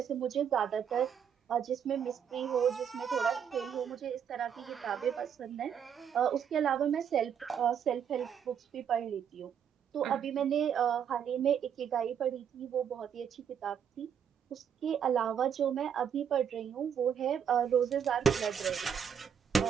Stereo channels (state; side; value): quieter; left; 8.1 dB